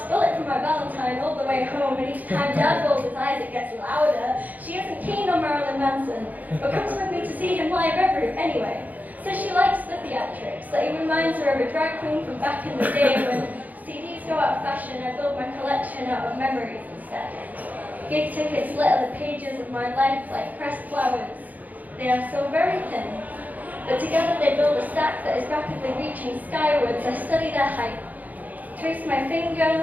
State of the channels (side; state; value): left; late; 0.080 ms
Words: Bullet for my Valentine all the way home, and each time Dad rolls his eyes, it gets louder. She isn't keen on Marilyn Manson, but comes with me to see him live anyway. Says she likes the theatrics, that he reminds her of a drag queen from back in the day when CDs go out of fashion. I build my collection out of memories instead. Gig tickets litter the pages of my life like pressed flowers. They are so very thin, but together they build a stack that is rapidly reaching skywards. I study their height, trace my finger